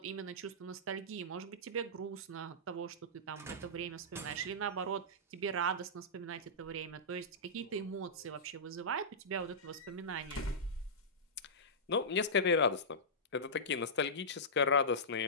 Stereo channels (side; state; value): both; normal; correlation -0.16